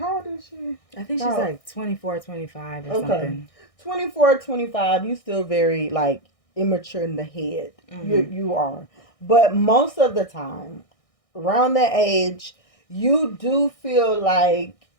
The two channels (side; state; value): right; late; 1.6 ms